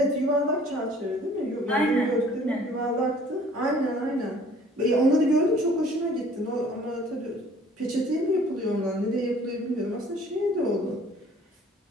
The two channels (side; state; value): both; normal; correlation 0.54